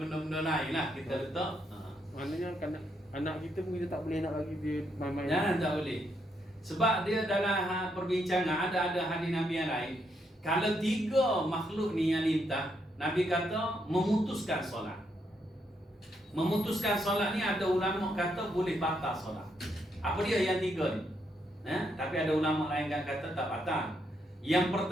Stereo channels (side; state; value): both; normal; correlation 0.77